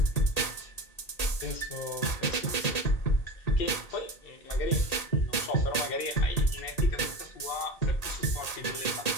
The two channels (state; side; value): late; right; 1.8 ms